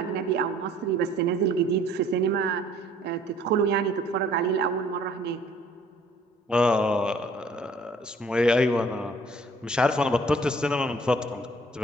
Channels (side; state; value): both; normal; correlation 0.57